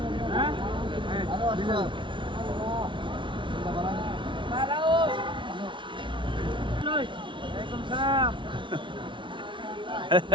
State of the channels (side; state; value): left; late; 0.24 ms